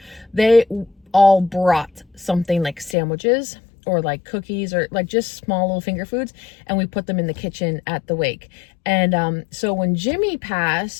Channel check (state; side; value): drops out; right; at 3.0 s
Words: they all brought something like sandwiches or like cookies or like just small little finger foods, and we put them in the kitchen at the wake. And so when Jimmy